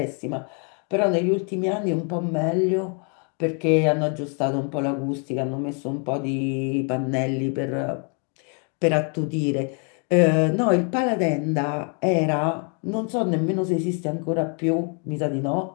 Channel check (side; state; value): right; quieter; 39.6 dB